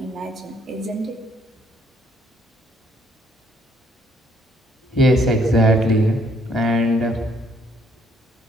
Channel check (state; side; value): normal; both; correlation 0.67